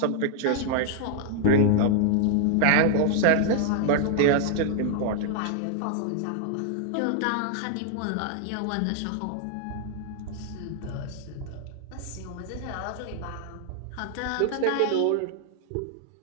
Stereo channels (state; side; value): different; both; correlation 0.00